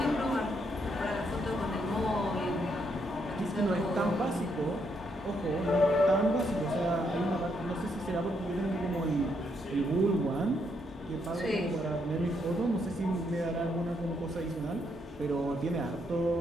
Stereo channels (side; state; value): both; normal; correlation 0.75